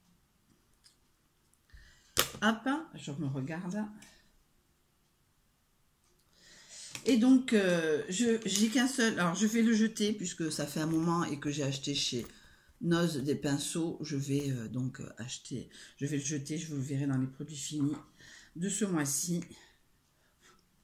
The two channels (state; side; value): identical; both; correlation 1.00